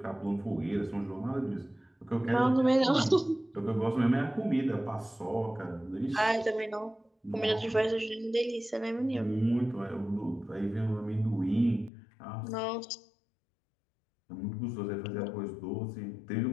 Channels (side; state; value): right; drops out; at 11.9 s